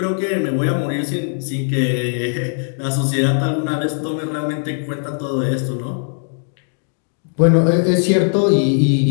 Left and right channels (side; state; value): right; silent; digital silence